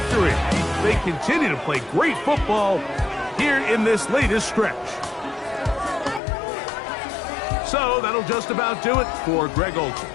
They continue to play great football here in this latest stretch. So that'll just about do it for Greg Olsen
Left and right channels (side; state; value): right; drops out; at 6.2 s